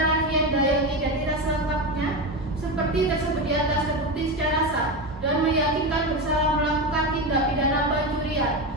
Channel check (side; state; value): both; normal; correlation 0.18